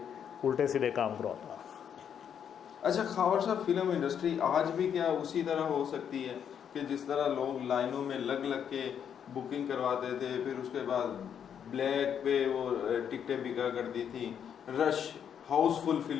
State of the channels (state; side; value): quieter; right; 8.3 dB